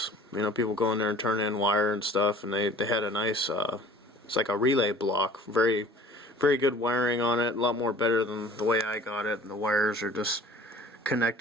People go in there and turn in wire and stuff, and they had a nice, it's like a relay block. Very, very good wiring on it. A lot more better than the way I got it. And the wires are just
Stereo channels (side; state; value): both; normal; correlation 0.47